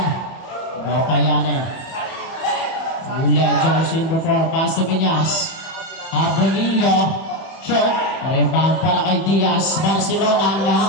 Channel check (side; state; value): right; late; 31 ms